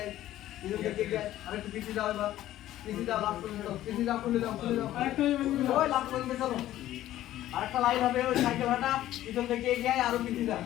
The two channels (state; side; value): quieter; right; 13.7 dB